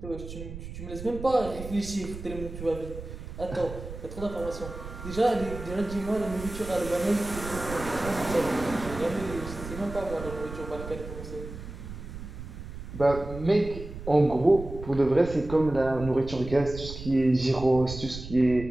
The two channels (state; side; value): noise; right; rumble, 11 dB below the sound